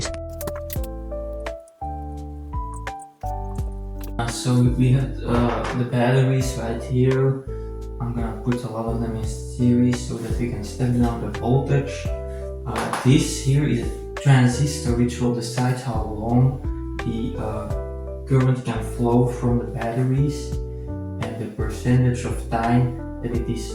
So we have the batteries right here. I'm gonna put a lot of them in series so that we can step down the voltage. This here is a transistor which will decide how long the current can flow from the batteries, and the percentage of time that it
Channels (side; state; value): both; identical; correlation 1.00